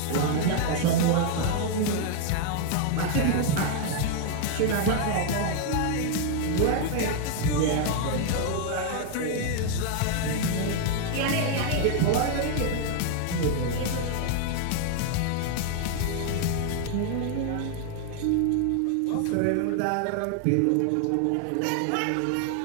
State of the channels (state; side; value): different; both; correlation 0.00